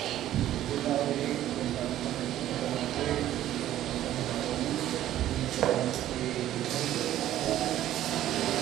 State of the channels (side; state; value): left; quieter; 12.9 dB